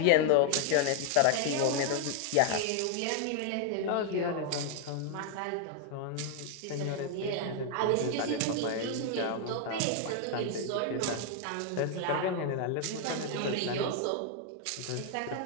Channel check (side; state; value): both; different; correlation 0.00